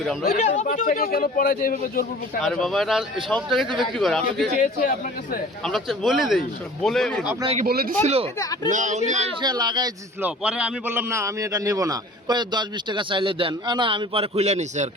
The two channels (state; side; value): normal; both; correlation 0.45